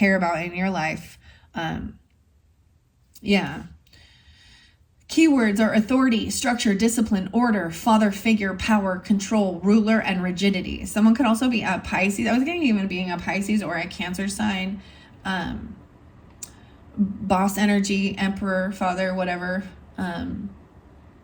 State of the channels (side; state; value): both; identical; correlation 1.00